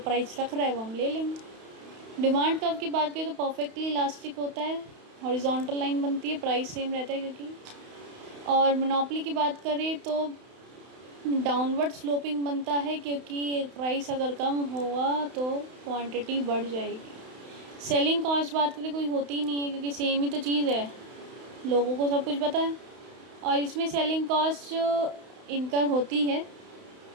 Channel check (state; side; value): late; left; 31 ms